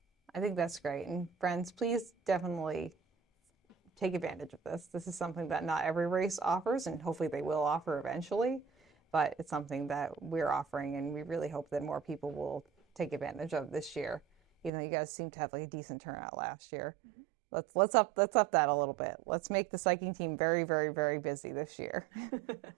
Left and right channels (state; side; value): drops out; left; at 14.7 s